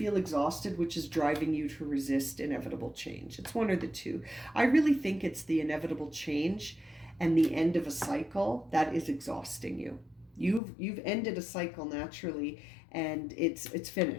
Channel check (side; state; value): right; drops out; at 10.6 s